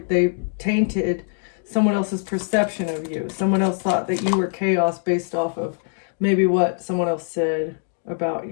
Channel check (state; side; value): silent; right; 60 dB below the other